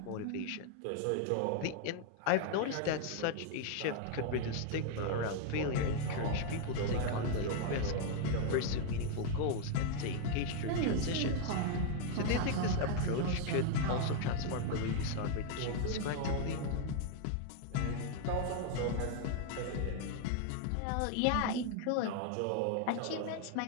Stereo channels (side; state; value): both; different; correlation 0.00